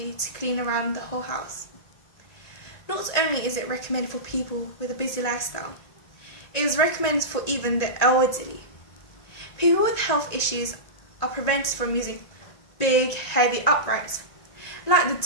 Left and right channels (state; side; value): late; right; 1.9 ms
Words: to clean around the whole house. Not only is it recommended for people with a busy lifestyle, it is recommended for even the elderly. People with health issues are prevented from using big, heavy uprights, like the